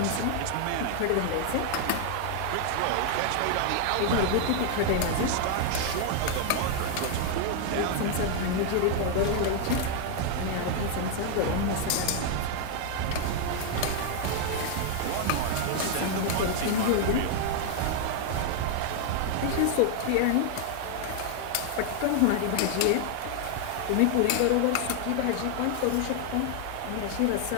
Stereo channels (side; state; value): both; different; correlation 0.00